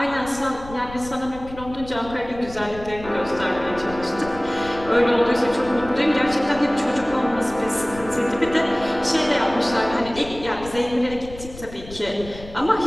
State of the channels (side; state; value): left; noise; rumble, 15 dB below the sound